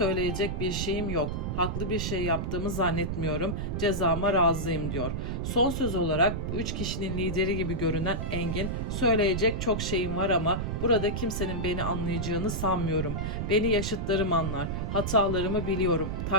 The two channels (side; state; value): right; noise; rumble, 2 dB below the sound